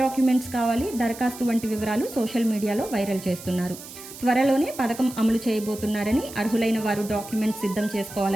కావాలి, దరఖాస్తు వంటి వివరాలు సోషల్ మీడియాలో వైరల్ చేస్తున్నారు. త్వరలోనే పథకం అమలు చేయబోతున్నారని, అర్హులైన వారు డాక్యుమెంట్స్ సిద్ధం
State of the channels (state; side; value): noise; right; hiss, 14 dB below the sound